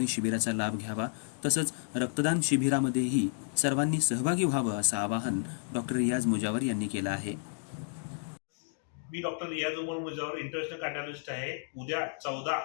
शिबिराचा लाभ घ्यावा, तसंच रक्तदान शिबिरामध्येही सर्वांनी सहभागी व्हावं असं आवाहन डॉक्टर रियाज मुजावर यांनी केलं आहे। मी डॉक्टर रियाज मुजावर इंटरनॅशनल कार्डिओलॉजिस्ट आहे। उद्या 14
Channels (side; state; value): right; silent; digital silence